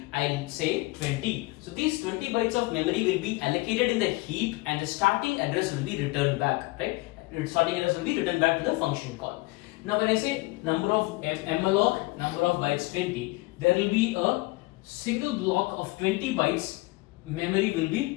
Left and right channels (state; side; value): quieter; right; 22.8 dB